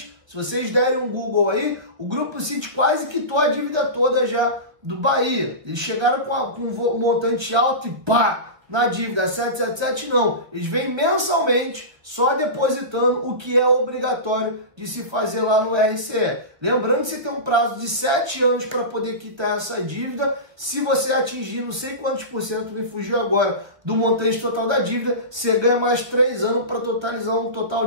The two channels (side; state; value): left; late; 1.4 ms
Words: Se vocês derem um Google aí, o Grupo City quase quitou a dívida toda já do Bahia. Eles chegaram com um montante alto e pá! Na dívida. 777 não. Eles vêm mensalmente só depositando o que é obrigatório de se fazer lá no RCE. Lembrando que você tem um prazo de 7 anos para poder quitar essa dívida. Se você atingir não sei quantos por cento, me fugiu agora, do montante total da dívida, você ganha mais 3 anos para totalizar um total